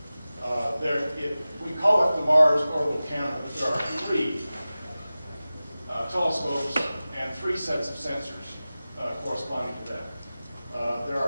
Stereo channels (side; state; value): both; inverted; correlation -0.96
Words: it. We call it the Mars orbital camera, but there are three telescopes and three sets of sensors corresponding to that. There